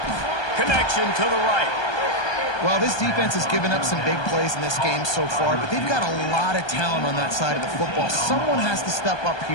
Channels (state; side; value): late; right; 1.2 ms